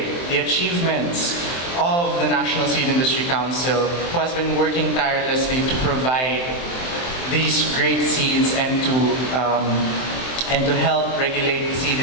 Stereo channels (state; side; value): late; right; 23 ms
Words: the achievements of the National Seed Industry Council, who has been working tirelessly to provide these great seeds and to help regulate the seed